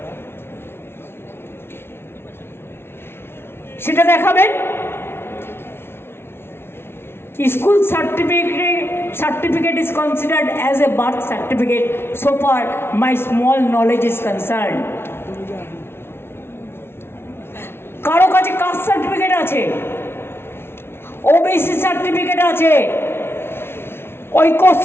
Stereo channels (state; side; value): late; right; 0.12 ms